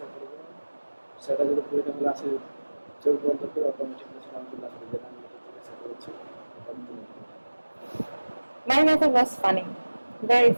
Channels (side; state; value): both; inverted; correlation -1.00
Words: করবো সেটা যদি পরিণামে আসে চোখ বন্ধ করে অটোমেটিক আমি চলে আসবে যেটা আমি এটা জিজ্ঞাসা করেছি এটা আমি তুলে দিবো। My method was funny, very